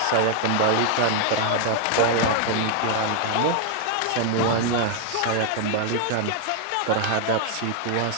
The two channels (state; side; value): different; both; correlation 0.00